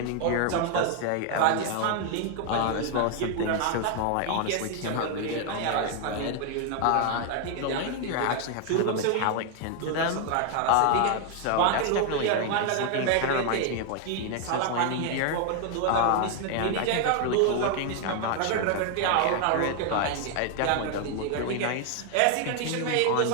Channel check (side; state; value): both; different; correlation 0.01